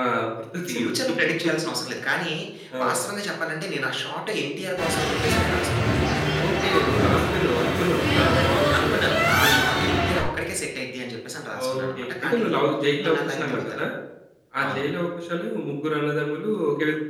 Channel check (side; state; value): both; identical; correlation 1.00